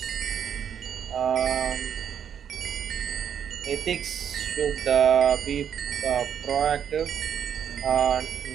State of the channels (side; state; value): left; quieter; 8.6 dB